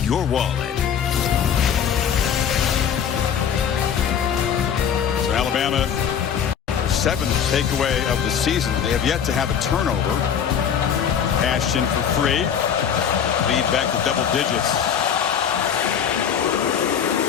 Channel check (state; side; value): quieter; right; 8.0 dB